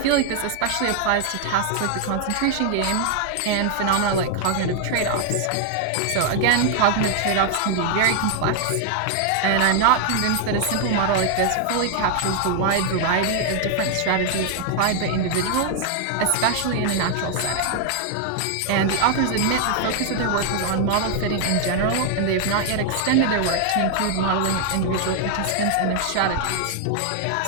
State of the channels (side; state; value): both; different; correlation 0.00